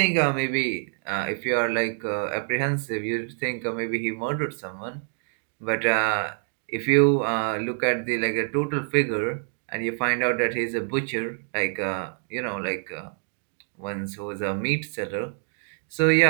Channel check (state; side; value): silent; left; 57 dB below the other